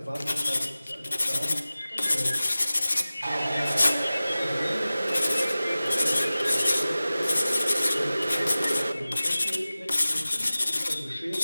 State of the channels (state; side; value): inverted; both; correlation -0.97